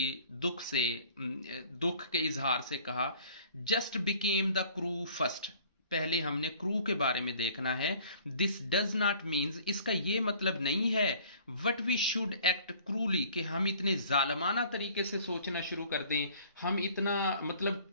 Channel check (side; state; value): both; inverted; correlation -0.52